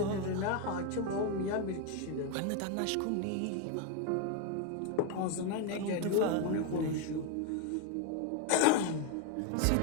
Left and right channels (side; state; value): both; different; correlation 0.01